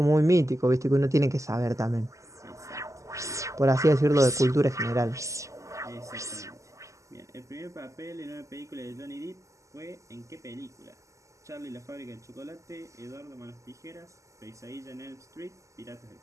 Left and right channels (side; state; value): left; late; 0.15 ms